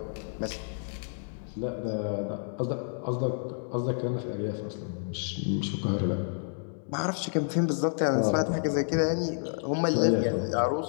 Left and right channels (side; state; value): right; silent; digital silence